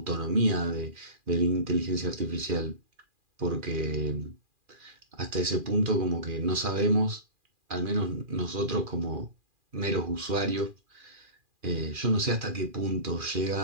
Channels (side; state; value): left; late; 2.4 ms